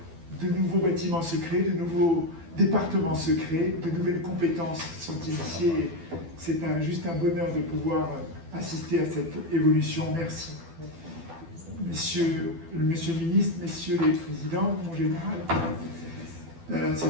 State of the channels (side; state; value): left; late; 12 ms